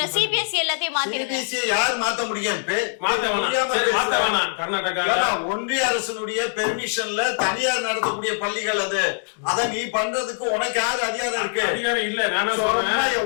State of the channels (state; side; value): silent; right; digital silence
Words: யார் மாத்த முடியும்? ஒன்றிய அரசனுடைய பெர்மிஷன்ல தனியார் நடத்தக்கூடிய பள்ளிகள் அது. அத நீ பண்றதுக்கு உனக்கு யாரு அதிகாரம் இருக்கு?